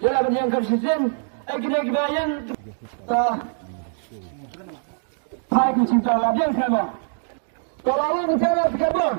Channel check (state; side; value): silent; left; digital silence